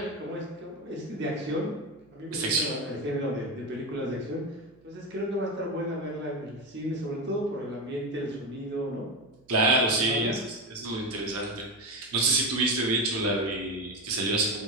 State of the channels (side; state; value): right; noise; hum, 30 dB below the sound